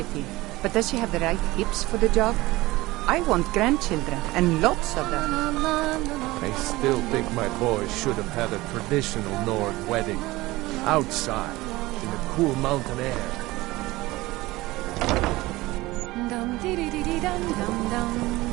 but does she have the right hips for the job? I want grandchildren, and lots of them. I still think my boy should have had a traditional Nord wedding. Outside, in the cool mountain air.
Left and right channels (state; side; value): quieter; left; 19.5 dB